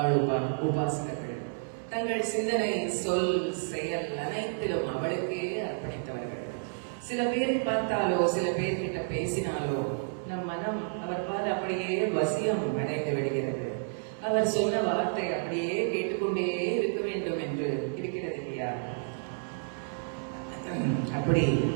உபாசகர்கள். தங்கள் சிந்தனை, சொல், செயல் அனைத்திலும் அவளுக்கே அர்ப்பணித்தவர்கள். சில பேரை பார்த்தாலோ, சில பேர்கிட்ட பேசினாலோ நம் மனம் அவர் பால் அப்படியே வசியம் அடைந்து விடுகிறது. அவர் சொன்ன வார்த்தை அப்படியே கேட்டுக்கொண்டே இருக்க வேண்டும் என்று இருக்கிறது இல்லையா? அப்படி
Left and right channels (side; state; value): left; silent; 58 dB below the other